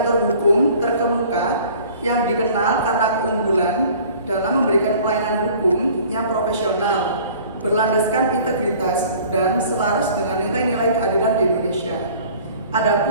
hukum terkemuka yang dikenal karena keunggulan dalam memberikan pelayanan hukum yang profesional, berlandaskan integritas dan selaras dengan nilai-nilai keadilan di Indonesia.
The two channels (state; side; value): inverted; both; correlation -0.50